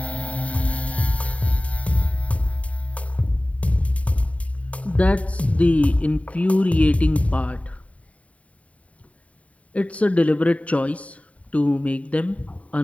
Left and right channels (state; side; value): late; right; 0.067 ms